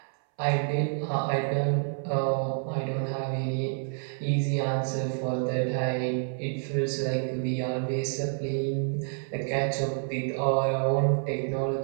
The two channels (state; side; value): silent; left; 58 dB below the other